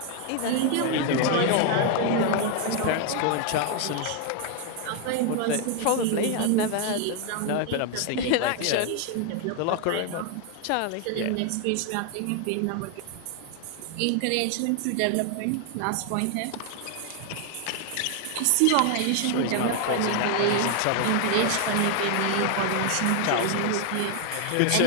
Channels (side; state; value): both; different; correlation 0.00